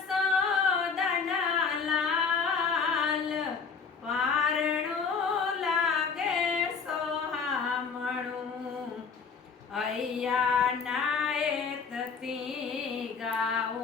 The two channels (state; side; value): quieter; right; 5.6 dB